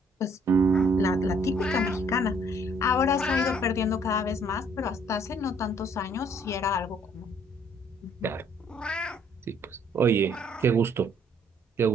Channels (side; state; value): both; normal; correlation 0.63